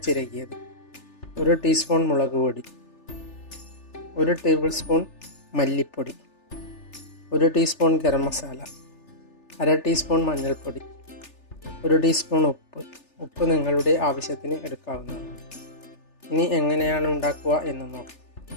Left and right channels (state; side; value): late; right; 3.4 ms